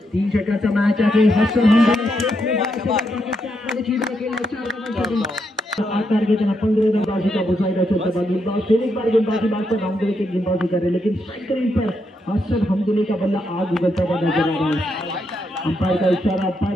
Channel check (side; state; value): both; normal; correlation 0.80